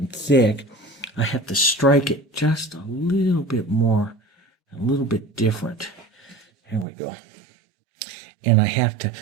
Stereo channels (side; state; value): left; drops out; at 6.9 s